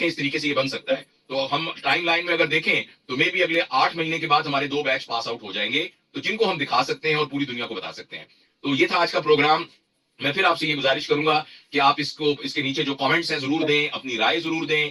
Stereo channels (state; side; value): identical; both; correlation 1.00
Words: اس طریقے سے یہ بن سکتا ہے. تو ہم ٹائم لائن میں اگر دیکھیں تو مے بھی اگلے 8 مہینے کے بعد ہمارے 2 بیچ پاس آؤٹ ہو جائیں گے, تو جن کو ہم دکھا سکتے ہیں اور پوری دنیا کو بتا سکتے ہیں. تو یہ تھا آج کا پروگرام. میں پھر آپ سے یہ گزارش کروں گا کہ آپ اس کے نیچے جو کامنٹس ہیں ضرور دیں, اپنی رائے ضرور دیں,